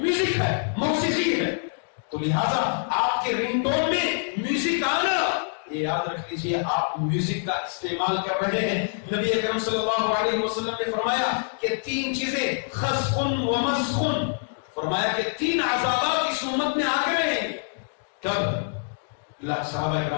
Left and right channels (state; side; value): silent; right; digital silence